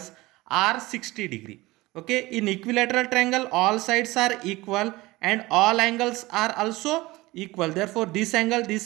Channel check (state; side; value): quieter; left; 20.2 dB